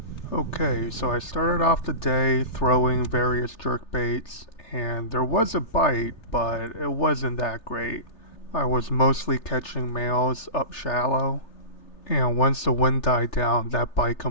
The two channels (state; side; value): late; right; 3.3 ms